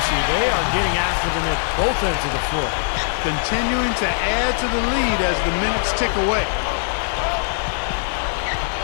They are getting after them at both ends of the floor. Continuing to add to the lead as the minutes tick away.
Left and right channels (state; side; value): silent; right; 65 dB below the other